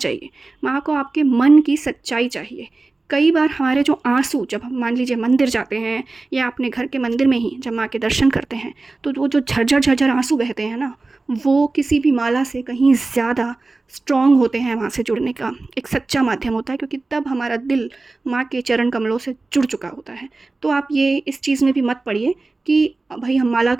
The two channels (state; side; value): quieter; left; 3.4 dB